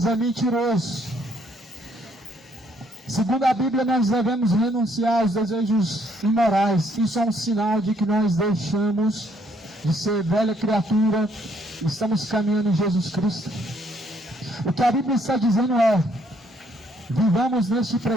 é mentiroso. Segundo a Bíblia, nós devemos renunciar aos desejos imorais. Isso é um sinal de que nós deixamos de ser velha criatura, estamos caminhando em Jesus Cristo. O que a Bíblia está dizendo é: vivamos neste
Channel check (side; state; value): both; normal; correlation 0.68